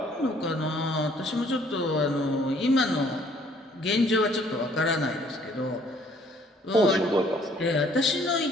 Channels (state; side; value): normal; both; correlation 0.61